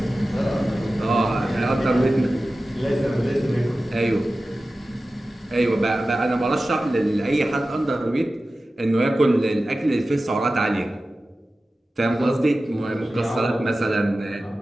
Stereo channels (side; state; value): both; normal; correlation 0.95